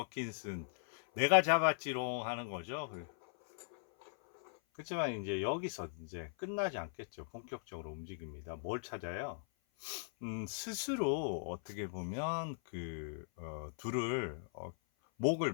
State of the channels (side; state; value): right; silent; 52 dB below the other